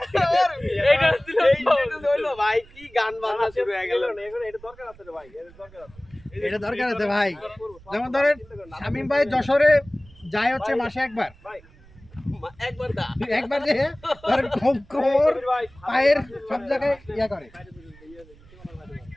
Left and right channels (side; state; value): right; noise; rumble, 24 dB below the sound